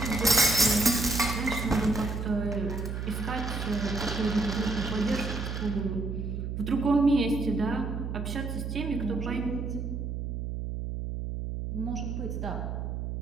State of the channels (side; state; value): right; noise; hum, 4 dB below the sound